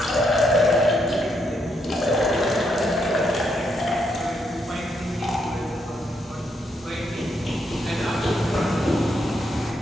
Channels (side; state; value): both; normal; correlation 0.77